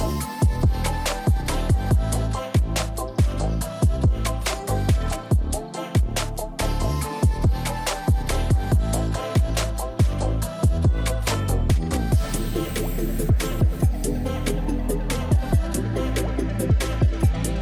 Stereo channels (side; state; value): both; identical; correlation 1.00